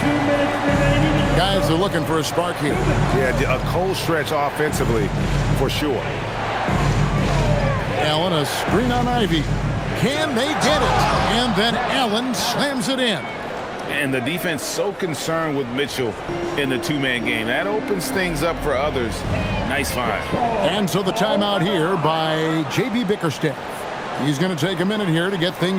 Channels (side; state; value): both; identical; correlation 1.00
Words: Guys are looking for a spark here. Yeah, a cold stretch offensively for sure. Allen a screen on Ivy. Can they get it? And then Allen slams it in. And the defense so concerned with Mitchell in the two-man game. That opens things up for others. Nice find. And so the timeout here by J.B. Bickerstaff. He's going to take a minute here to get